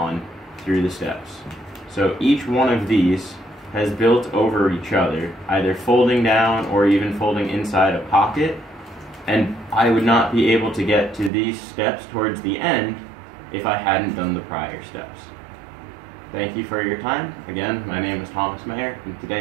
through the steps. So each one of these has built over each other, either folding down or even folding inside a pocket, and I would not be able to get to these steps towards the end if I hadn't done the prior steps. Thank you for your time. Again, my name is Thomas Mayer, and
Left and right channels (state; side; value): drops out; left; at 11.3 s